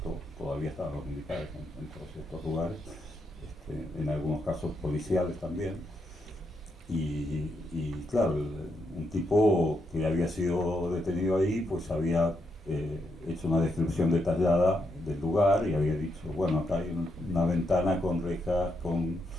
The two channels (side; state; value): both; normal; correlation 0.80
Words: todavía estaban los militares en todos estos lugares, en algunos casos policiales también, y claro, un tipo que había sido detenido ahí pues había hecho una descripción detallada del lugar y había dicho, bueno, acá hay una ventana con rejas, con